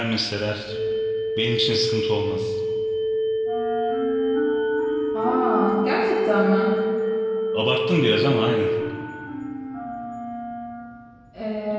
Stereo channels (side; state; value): both; identical; correlation 1.00